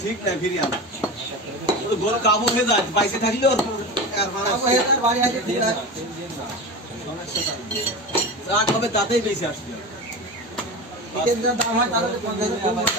ঠিক না ফিরিয়ে আনা গরু কাবু হয়ে যায় বাইসে থাকলে ওর বাড়ি আছে যা হবে তাতেই বেশি আসবে দাম হয় তাহলে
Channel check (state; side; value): normal; both; correlation 0.26